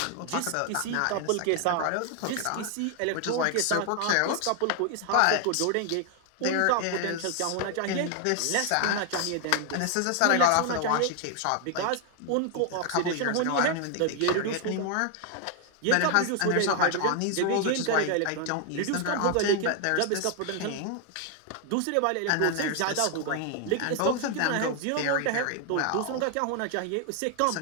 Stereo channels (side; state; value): both; different; correlation 0.00